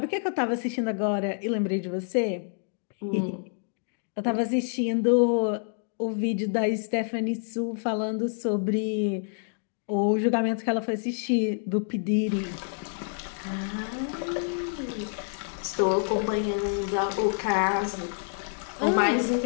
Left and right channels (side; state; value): right; silent; 60 dB below the other